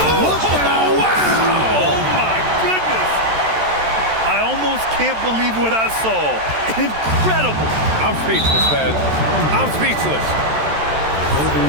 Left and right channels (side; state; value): left; late; 13 ms